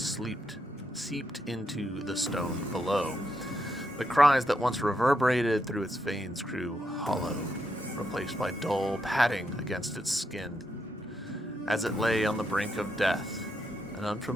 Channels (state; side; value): normal; both; correlation 0.81